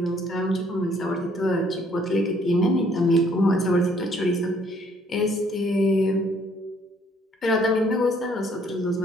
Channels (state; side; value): normal; both; correlation 0.64